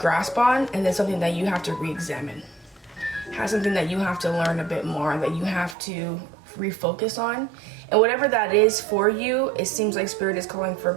on, and then something that you have to re-examine. Has something that you have to learn a bit more, that you have to refocus on. And whatever that is for you, it seems like Spirit is calling for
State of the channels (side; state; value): left; drops out; at 5.8 s